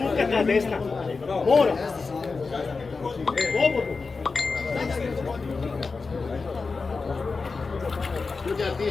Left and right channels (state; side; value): quieter; right; 4.4 dB